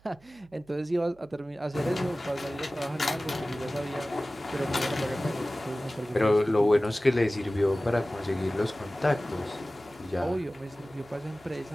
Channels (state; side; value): noise; right; hum, 28 dB below the sound